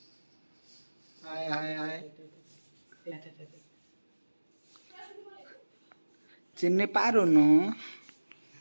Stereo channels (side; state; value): both; inverted; correlation -1.00